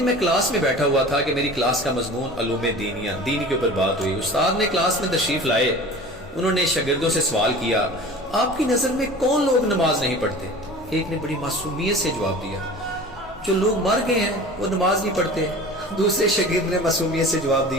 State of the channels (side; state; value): both; normal; correlation 0.39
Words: میں کلاس میں بیٹھا ہوا تھا کہ میری کلاس کا مضمون علوم دینیہ، دین کے اوپر بات ہوئی۔ استاد نے کلاس میں تشریف لائے، انہوں نے شاگردوں سے سوال کیا، آپ کی نظر میں کون لوگ نماز نہیں پڑھتے؟ ایک نے بڑی معصومیت سے جواب دیا، جو لوگ مر گئے ہیں وہ نماز نہیں پڑھتے۔ دوسرے شاگرد نے معصومیت سے جواب